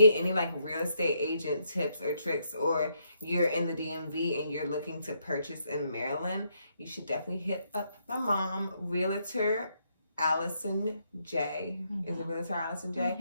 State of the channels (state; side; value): inverted; both; correlation -0.75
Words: any real estate agent tips or tricks, or you're in the DMV and you're looking to purchase in Maryland, you should definitely hit up my mom, Realtor Allison J. Is it Realtor Allison J